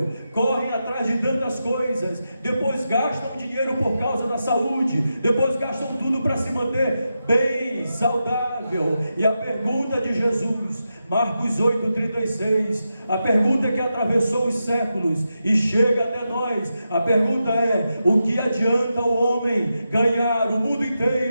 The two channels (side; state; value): both; inverted; correlation -0.88